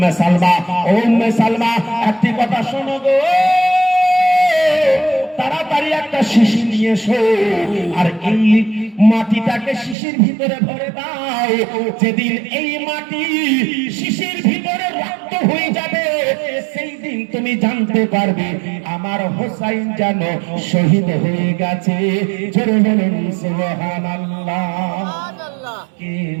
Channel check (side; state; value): left; drops out; at 10.0 s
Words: সালমা, ও উম্মে সালমা, একটি কথা শোনো গো, তাড়াতাড়ি একটা শিশি নিয়ে এসো, আর এই মাটিটাকে শিশির ভিতরে ভরে দাও। যেদিন এই মাটি শিশির ভিতরে রক্ত হয়ে যাবে, সেই দিন তুমি জানতে পারবে আমার হোসাইন যেন শহীদ হয়ে গেছে। জোরে বলুন সুবহানাল্লাহ। কে